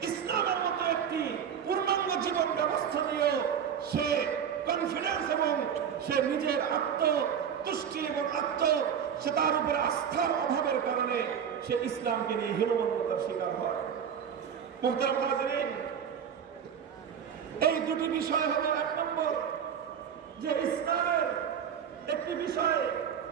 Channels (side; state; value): left; quieter; 8.1 dB